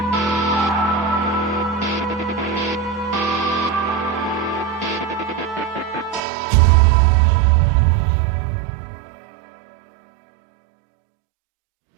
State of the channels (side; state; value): left; drops out; at 6.2 s